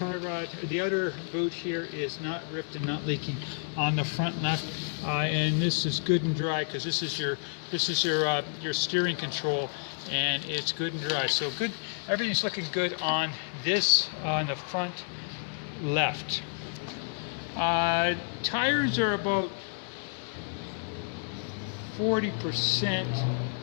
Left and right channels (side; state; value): right; silent; digital silence